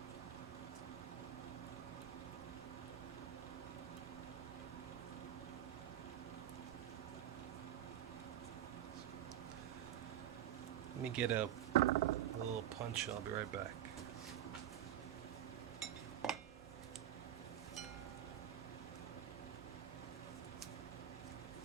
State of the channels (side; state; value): left; quieter; 11.1 dB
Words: Let me get a little punch, I'll be right back.